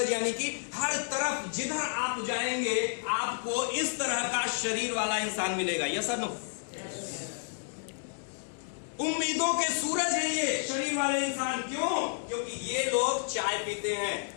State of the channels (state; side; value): silent; right; digital silence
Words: यानी कि हर तरफ जिधर आप जाएंगे आपको इस तरह का शरीर वाला इंसान मिलेगा। यस और नो? उम्मीदों के सूरज है ये शरीर वाले इंसान। क्यों? क्योंकि ये लोग चाय पीते हैं,